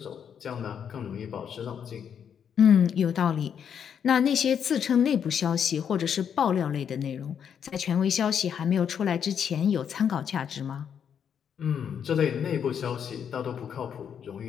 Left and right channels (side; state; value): right; quieter; 8.0 dB